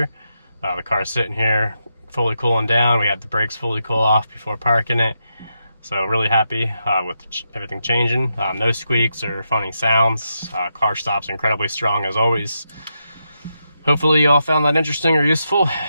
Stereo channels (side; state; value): both; inverted; correlation -0.84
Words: The car's sitting here fully cooling down. We had the brakes fully cool off before parking it. So really happy with everything changing. No squeaks or funny sounds. Car stops incredibly strong as always. Hopefully you all found that interesting or useful.